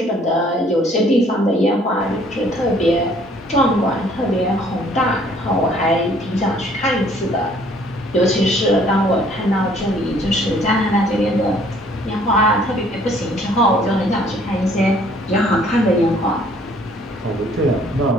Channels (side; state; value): both; normal; correlation 0.59